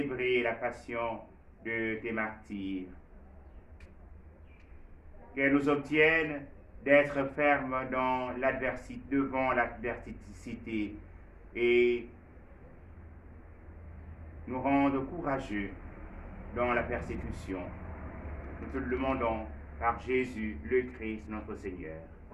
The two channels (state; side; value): identical; both; correlation 1.00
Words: la passion de tes martyrs. Qu'elle nous obtienne d'être fermes dans l'adversité, devant l'adversité et nous rende courageux dans la persécution. Nous te le demandons par Jésus, le Christ, notre Seigneur.